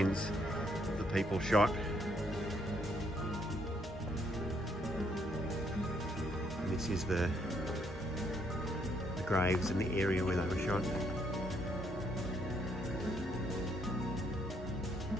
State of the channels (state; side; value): normal; both; correlation 0.71